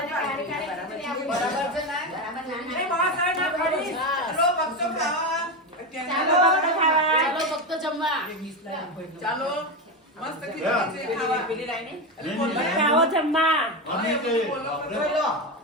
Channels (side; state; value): both; normal; correlation 0.15